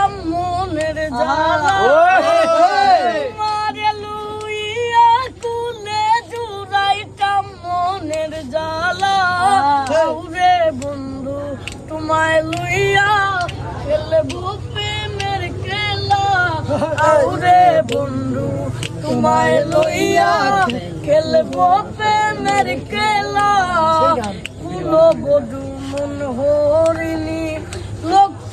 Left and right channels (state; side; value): identical; both; correlation 1.00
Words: মনের জ্বালা তোমার লুইয়া কোলে জুড়াইতাম মনের জ্বালা ওরে বন্ধু তোমায় লুইয়া খেলবো প্রেমের খেলা ওরে বন্ধু তোমায় লইয়া খেলবো প্রেমের খেলা কুলো বধু মন হরিণী লক্ষ